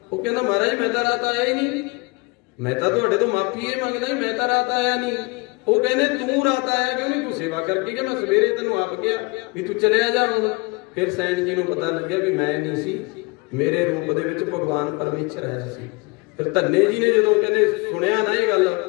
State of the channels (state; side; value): quieter; right; 27.1 dB